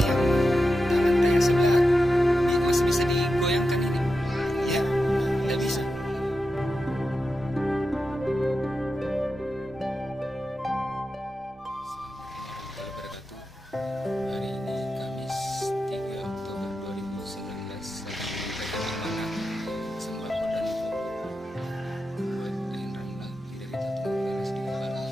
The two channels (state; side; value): normal; both; correlation 0.90